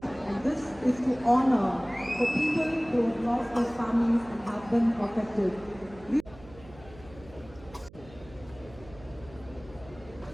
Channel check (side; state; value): right; noise; hum, 20 dB below the sound